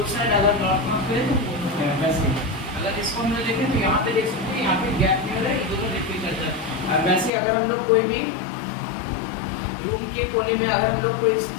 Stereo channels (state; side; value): drops out; right; at 7.3 s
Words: साइड अगर नॉर्थ नॉर्थ करे तो वो होता है, वैसे अगर इसको हम लोग देखें तो यहाँ पे देख सकते हैं यहाँ पे गैप नहीं हो रहा है, ये दोनों रिपेल करता है। और वैसे अगर हम लोग कोई भी रूम के कोने में अगर हम लोग कोई